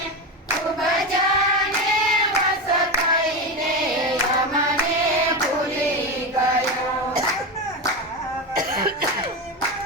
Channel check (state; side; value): normal; both; correlation 0.17